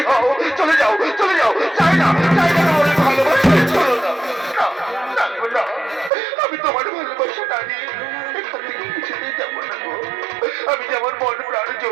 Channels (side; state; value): left; drops out; at 6.1 s